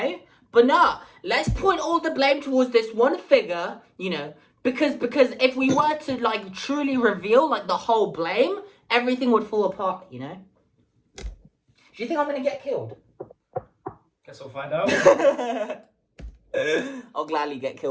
But no, let's point all the blame towards this one figure, you know, because if we were to, like, truly reveal, like, the whole blame, everything would fall apart, you know? Do you think I'm gonna get killed? Guess we'll find out. I'll gladly get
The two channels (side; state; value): both; identical; correlation 1.00